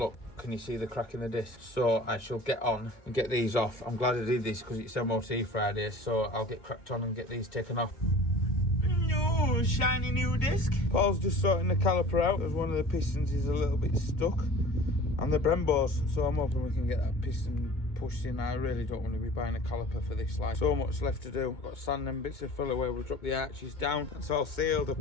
can you see the crack in the disc? So I shall get on and get these off. I'm glad I did this because it's MOT Friday, so I'll get cracked on and get these taken off. No, shiny new disc. Paul's just sorting the caliper out as one of the pistons is a little bit stuck. And the Brembos, so I'm hoping we can get that piston pushed in. I really don't want to be buying a caliper for this line. So much left to do. I've got sand and bits of filler where we'll drop the arches down. It's all sealed. I've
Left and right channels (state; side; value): late; right; 2.2 ms